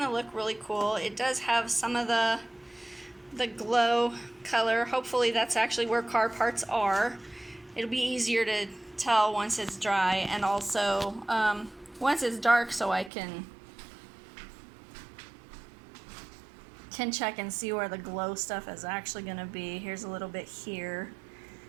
to look really cool. It does have some of the glow color. Hopefully that's actually where car parts are. It'll be easier to tell once it's dry, and also once it's dark, so I can check and see where the glow stuff is actually going to be. Here's a little bit here.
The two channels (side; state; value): left; drops out; at 13.1 s